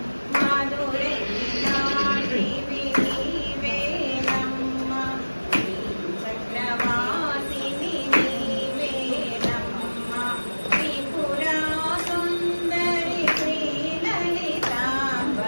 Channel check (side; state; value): both; inverted; correlation -1.00